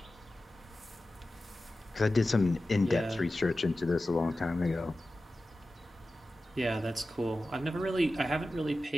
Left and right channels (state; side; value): normal; both; correlation 0.94